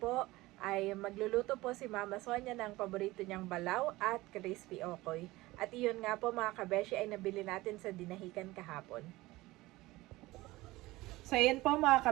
ay magluluto po si Mama Sonia ng paborito niyang balaw at crispy okoy. At iyon nga po mga kabeshi ay nabili natin sa dinahikan kahapon. So ayan po mga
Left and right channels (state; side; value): quieter; left; 19.3 dB